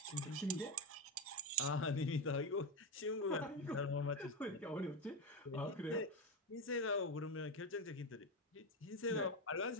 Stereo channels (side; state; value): both; normal; correlation 0.13